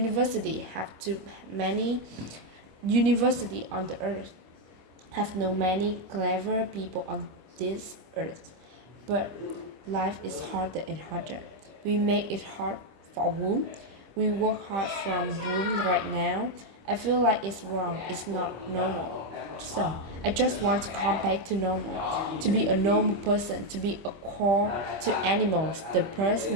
have too many university on the earth, have no many clever people on this earth. But life is harder and harder. We make it hard for a womb. We work hard from womb right now. I feel like it's wrong. It's not normal. So I just want to come back to normal, to be a normal person, to be a call to animals. The birds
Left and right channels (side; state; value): left; late; 25 ms